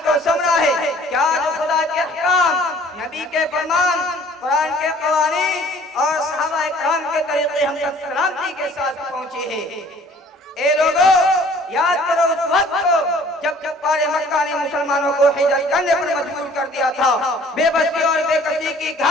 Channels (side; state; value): both; normal; correlation 0.54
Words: तो समरा है क्या जो खुदा के अहकाम, नबी के फरमान, कुरान के कवानीन और सहाबा इकराम के तरीके हम तक सलामती के साथ पहुंचे हैं। ए लोगों, याद करो उस वक्त को जब कुफ्फारे मक्का ने मुसलमानों को हिजरत करने पर मजबूर कर दिया था। बेबसी और बेकसी की